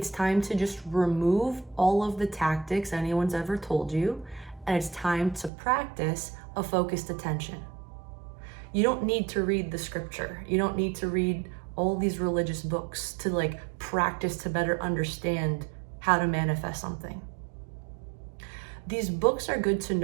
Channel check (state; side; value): drops out; left; at 5.5 s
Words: time to just remove all of the tactics anyone's ever told you, and it's time to practice a focused attention. You don't need to read the scripture. You don't need to read all these religious books to like practice to better understand how to manifest something. These books are good to